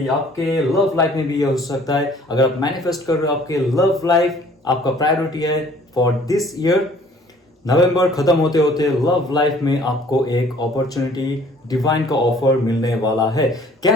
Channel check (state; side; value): normal; both; correlation 0.55